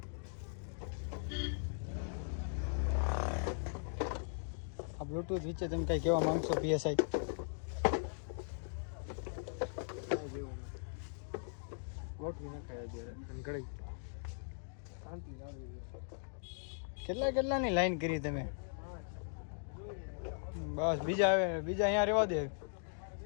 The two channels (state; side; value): silent; right; digital silence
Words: આ બ્લૂટૂથ વિશે તમે કઈ કહેવા માંગશો પીએસઆઈ? ગોઠવી નખાય અત્યારે અને ઘડી શાંતિ જાળવી. કેટલાની લાઈન કરી તમે? બસ બીજા આવે, બીજા અહીંયા રહેવા દે.